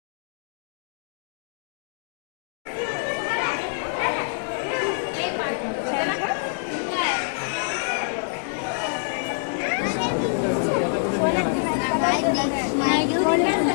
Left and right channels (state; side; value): silent; right; digital silence